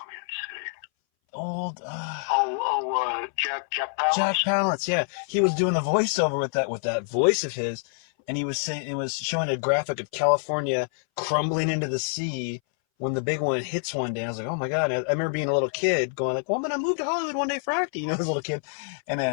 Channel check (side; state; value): right; silent; 60 dB below the other